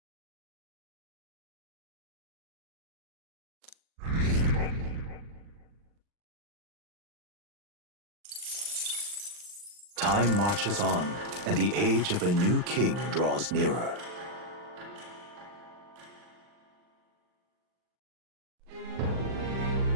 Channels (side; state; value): left; late; 39 ms